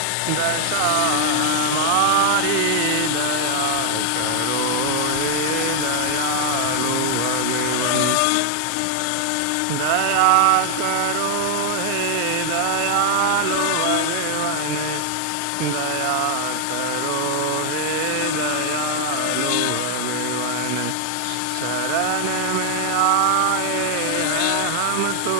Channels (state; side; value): different; both; correlation 0.00